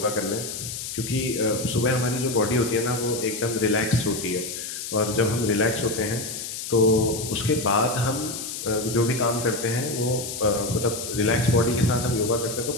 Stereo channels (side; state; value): left; noise; hiss, 7 dB below the sound